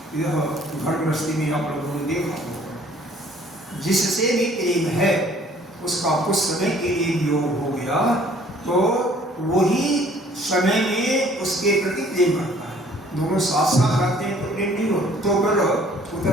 यह घर गृहस्थी में आप लोगों ने देखा होगा, जिससे भी प्रेम है उसका कुछ समय के लिए वियोग हो गया तो वही समय में उसके प्रति प्रेम बढ़ता है। दोनों साथ साथ रहते हैं तो प्रेम नहीं होता, तो फिर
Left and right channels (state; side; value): normal; both; correlation 0.56